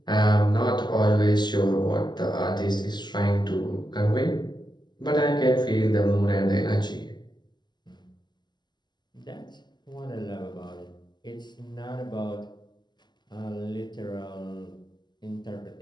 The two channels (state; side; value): late; right; 0.21 ms